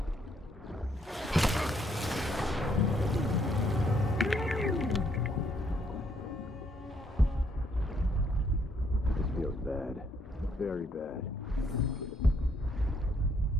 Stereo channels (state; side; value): normal; both; correlation 0.70